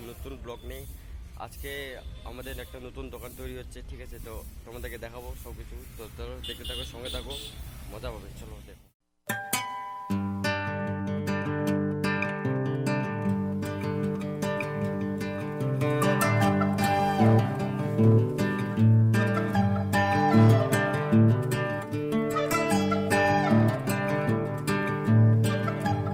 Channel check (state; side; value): identical; both; correlation 1.00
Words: নতুন ব্লগ নিয়ে। আজকে আমাদের একটা নতুন দোকান তৈরি হচ্ছে, ঠিক আছে? তো তোমাদেরকে দেখাবো সব কিছু। তো চলো দেখতে থাকো, সঙ্গে থাকো, মজা পাবে। চলো দেখো।